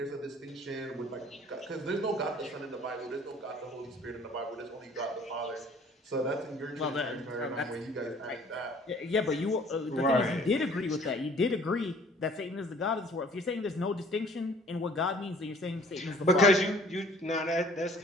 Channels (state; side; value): normal; both; correlation 0.54